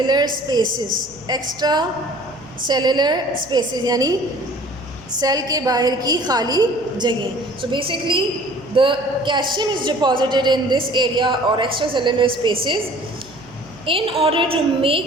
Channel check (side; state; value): right; noise; hum, 24 dB below the sound